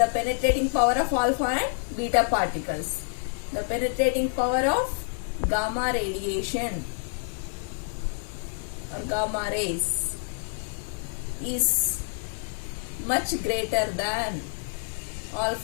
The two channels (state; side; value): silent; right; 60 dB below the other